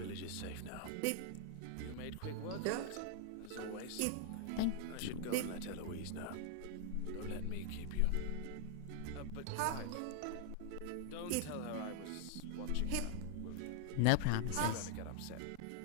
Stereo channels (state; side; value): different; both; correlation -0.01